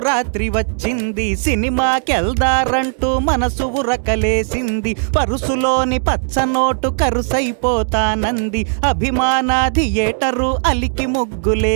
వచ్చింది, సినిమాకెళ్దారంటూ మనసు ఉరకలేసింది. పరుసులోని పచ్చనోటు కరుసైపోతానంది, అభిమాన థియేటరు అలికి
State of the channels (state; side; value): silent; left; digital silence